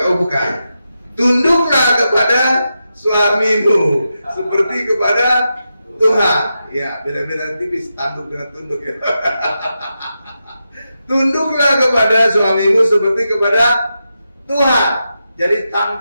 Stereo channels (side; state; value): both; inverted; correlation -0.88